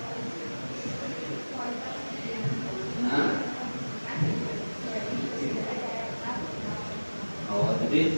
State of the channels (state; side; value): inverted; both; correlation -1.00